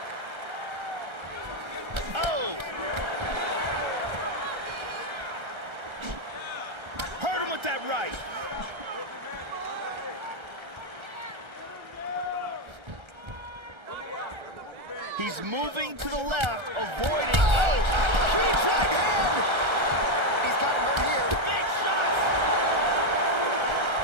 Oh! Hurt him with that right. He's moving to the left, avoiding. Oh! Huge right hand. He's got him hurt here. Big shots!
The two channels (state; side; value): late; left; 1.3 ms